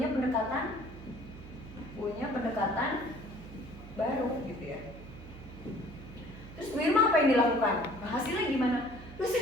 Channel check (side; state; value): right; noise; hum, 15 dB below the sound